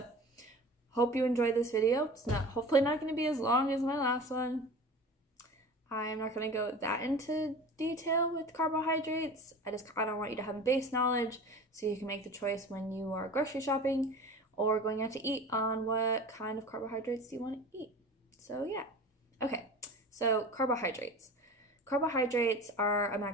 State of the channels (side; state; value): both; normal; correlation 0.38